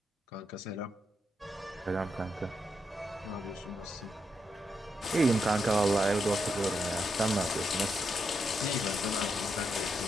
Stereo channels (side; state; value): both; normal; correlation 0.82